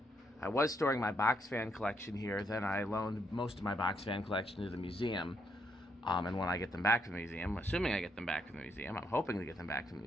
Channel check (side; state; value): both; normal; correlation 0.76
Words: I was storing my box fan collection here. Then I loaned most of my box fan collection to the museum. And when I get them back to the museum, assuming I get them back to the museum, I'm hoping to get them back to the